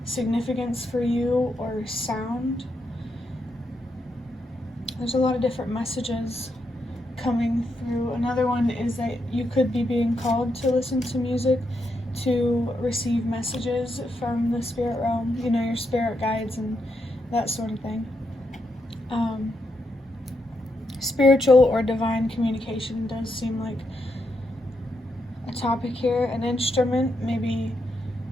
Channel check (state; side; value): normal; both; correlation 0.82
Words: significance for you, or sound. There's a lot of different messages coming through. Another one is that you could be being called to listen to music to receive messages from the spirit realm, your spirit guides and that sort of thing. Spiritual or divine communication does seem like a topic here. An instrument, maybe